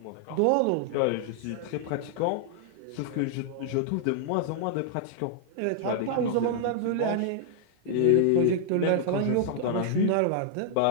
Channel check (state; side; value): different; both; correlation -0.01